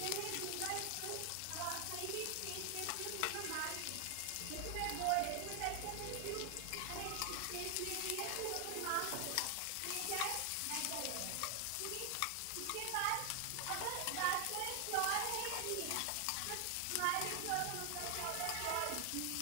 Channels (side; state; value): both; different; correlation 0.00